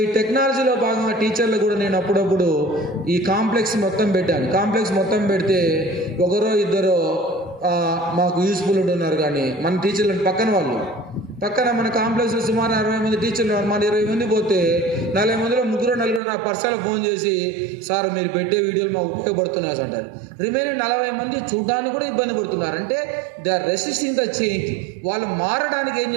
ఈ టెక్నాలజీలో భాగంగా టీచర్లు కూడా నేను అప్పుడప్పుడు ఈ కాంప్లెక్స్ మొత్తం పెట్టాను. కాంప్లెక్స్ మొత్తం పెడితే ఒకరో ఇద్దరో మాకు యూస్ఫుల్ ఉంటున్నారు. కానీ మన టీచర్లు పక్కన మన కాంప్లెక్స్లో సుమారు 60 మంది టీచర్లు, మన 20 మంది పోతే 40 మందిలో 3-4 నా పర్సనల్ ఫోన్ చేసి సార్ మీరు పెట్టే వీడియోలు మాకు ఉపయోగపడుతున్నాయి అంటారు. రిమైనింగ్ 40 మంది చూడడానికి కూడా ఇబ్బంది పడుతున్నారు. అంటే they are resisting the change. వాళ్ళు మారడానికి ఏం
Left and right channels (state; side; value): drops out; left; at 16.2 s